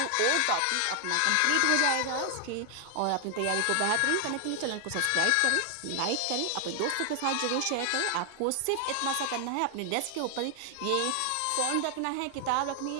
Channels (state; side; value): different; both; correlation 0.00